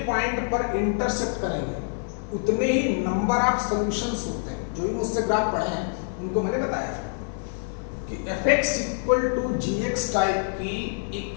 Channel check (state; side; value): silent; right; 59 dB below the other